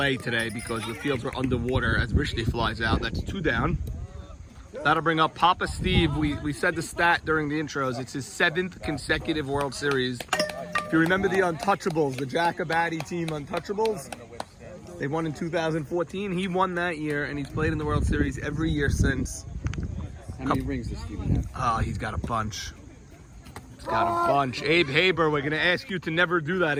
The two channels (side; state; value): both; identical; correlation 1.00